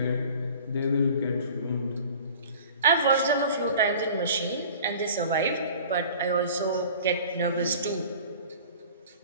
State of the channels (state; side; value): inverted; both; correlation -0.43